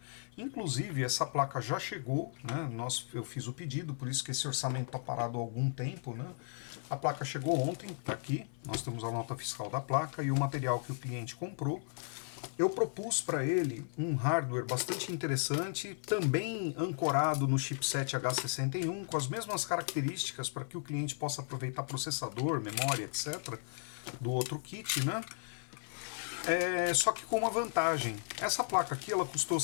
Inclusive, essa placa já chegou, né, eu fiz o pedido, por isso que esse orçamento está parado há algum tempo. Né? A placa chegou ontem, está aqui, nós temos a nota fiscal da placa e o material que o cliente comprou. Eu propus para ele um hardware bastante interessante, também ancorado no chipset H61, com as mesmas características para que o cliente possa aproveitar processador, memória, etc., do outro kit, né? Só que com uma vantagem. Essa placa aqui ela custou R$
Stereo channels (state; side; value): silent; right; 54 dB below the other